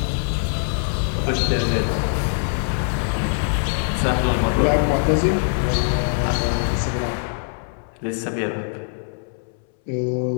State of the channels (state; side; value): silent; right; 64 dB below the other